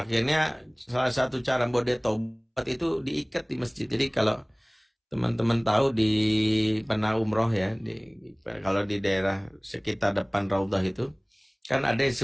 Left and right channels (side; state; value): both; identical; correlation 1.00